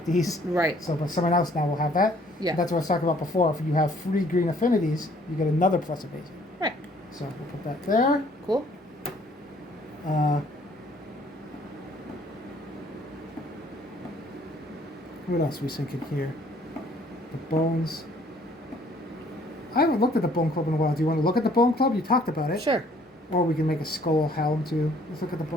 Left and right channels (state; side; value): normal; both; correlation 0.60